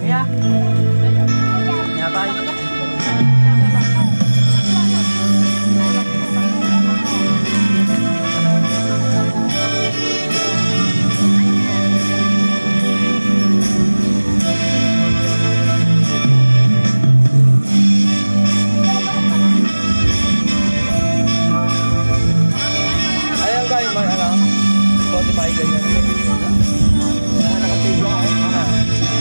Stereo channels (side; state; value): both; inverted; correlation -1.00